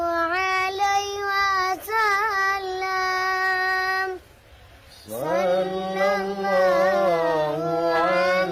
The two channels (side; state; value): both; identical; correlation 1.00